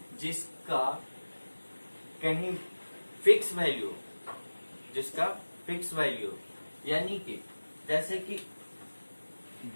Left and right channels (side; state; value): both; inverted; correlation -1.00